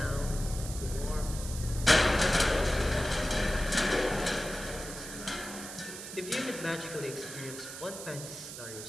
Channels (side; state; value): right; noise; hiss, 10 dB below the sound